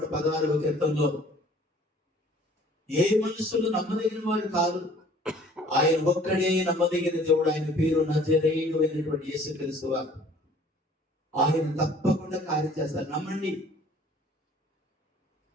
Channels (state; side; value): normal; both; correlation 0.53